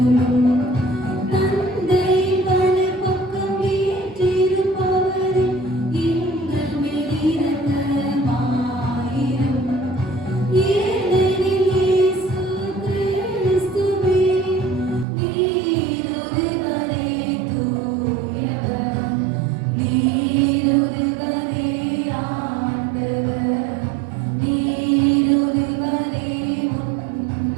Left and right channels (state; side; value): drops out; left; at 15.1 s